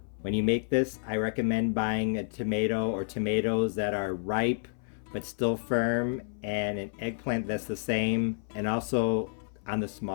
When you make this, I recommend buying a tomato or tomatoes that are ripe but still firm, and an eggplant that's the same, and also on the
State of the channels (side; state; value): right; silent; 57 dB below the other